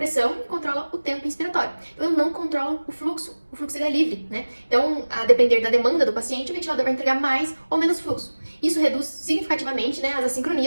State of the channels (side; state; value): both; inverted; correlation -1.00